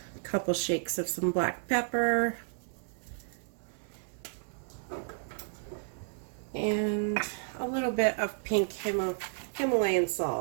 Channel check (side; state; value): left; silent; 56 dB below the other